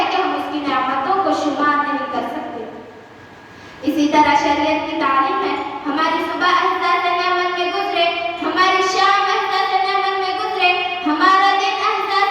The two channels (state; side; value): identical; both; correlation 1.00